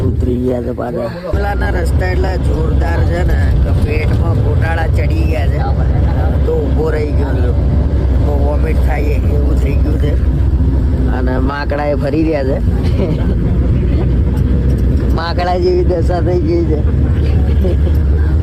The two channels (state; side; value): identical; both; correlation 1.00